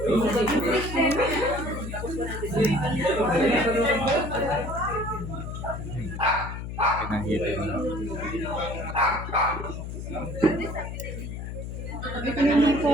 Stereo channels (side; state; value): left; noise; hum, 7 dB below the sound